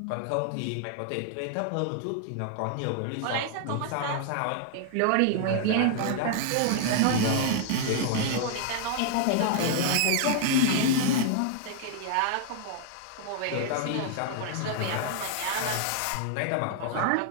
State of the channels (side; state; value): both; different; correlation 0.00